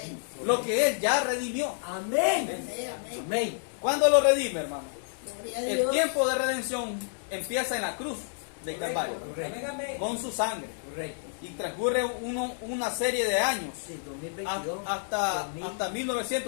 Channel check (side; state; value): right; silent; digital silence